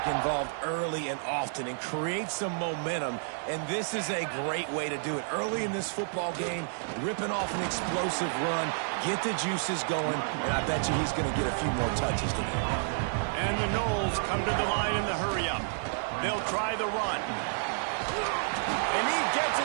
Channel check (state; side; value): silent; left; 58 dB below the other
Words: involved early and often and create some momentum, and this is a great way to do it. Early in this football game, ripping off an explosive run, get the juices going, and I bet you he's going to get a few more touches today. And the Knowles come to the line in the hurry-up. They'll try the run. And he gets